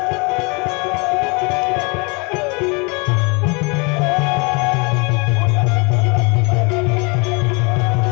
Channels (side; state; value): right; quieter; 30.6 dB